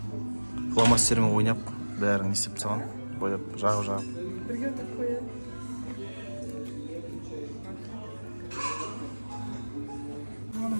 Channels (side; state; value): both; inverted; correlation -1.00